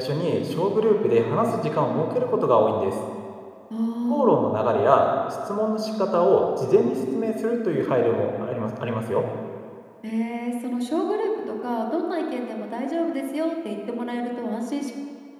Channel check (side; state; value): both; identical; correlation 1.00